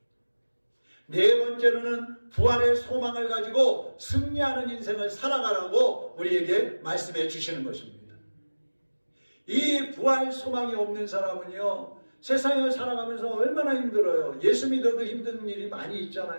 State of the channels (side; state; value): both; inverted; correlation -1.00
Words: 네 번째로는 부활의 소망을 가지고 승리하는 인생을 살아가라고 우리에게 말씀해 주시는 것입니다. 이 부활 소망이 없는 사람은요, 세상을 살아가면서 얼마나 힘들어요. 예수 믿어도 힘든 일이 많이